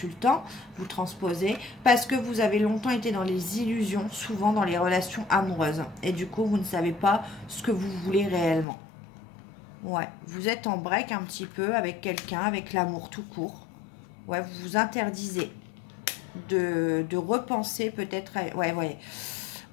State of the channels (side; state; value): right; drops out; at 8.7 s